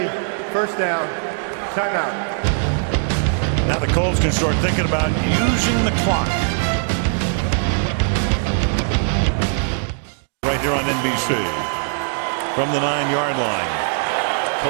first down, timeout. Now the Colts can start thinking about using the clock. Right here on NBC. From the 9-yard line.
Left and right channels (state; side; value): silent; left; digital silence